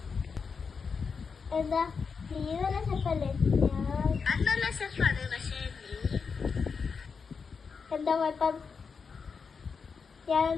എന്താ നീ നല്ല ഷെഫല്ലേ? നല്ല ഷെഫാണ്. പക്ഷേ എന്താ കുഴപ്പം?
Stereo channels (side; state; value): right; quieter; 5.5 dB